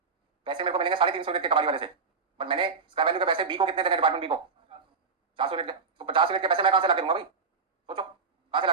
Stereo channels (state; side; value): quieter; left; 5.0 dB